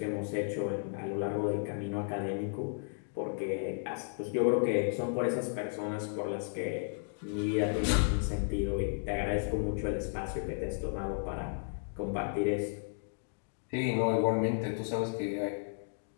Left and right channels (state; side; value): silent; right; digital silence